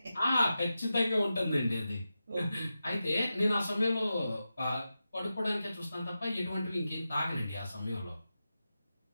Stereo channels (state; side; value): inverted; both; correlation -0.91